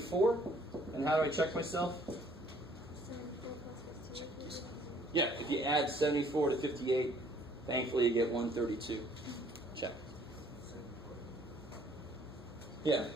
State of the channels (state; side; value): normal; both; correlation 0.60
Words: And how do I check myself? Yeah, if you add 74 to 58, thankfully you get 132. Check. Yeah,